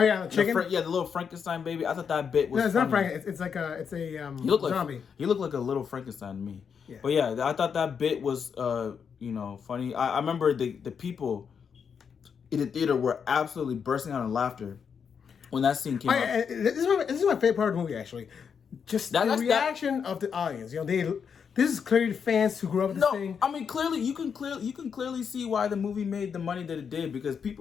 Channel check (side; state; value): right; quieter; 6.7 dB